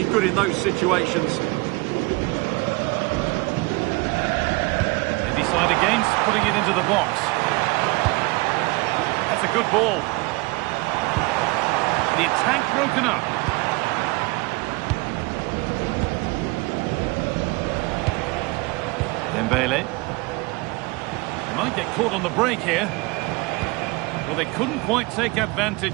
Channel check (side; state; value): left; quieter; 24.8 dB